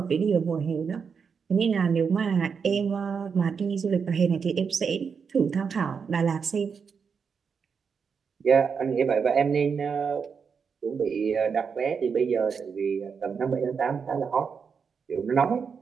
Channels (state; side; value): quieter; left; 6.1 dB